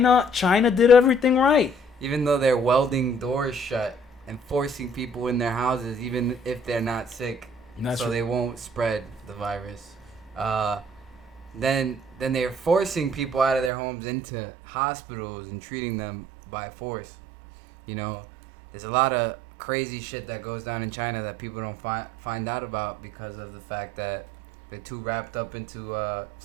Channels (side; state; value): left; drops out; at 13.7 s